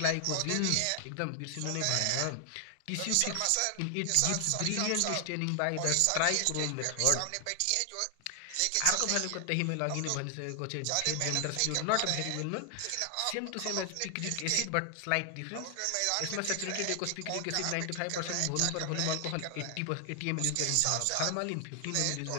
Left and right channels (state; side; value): different; both; correlation 0.00